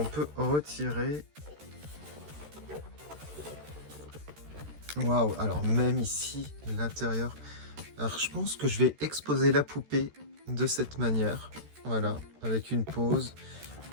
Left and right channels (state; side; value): late; left; 13 ms